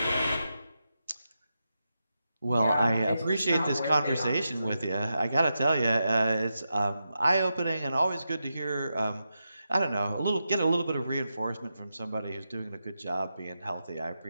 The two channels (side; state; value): both; inverted; correlation -0.88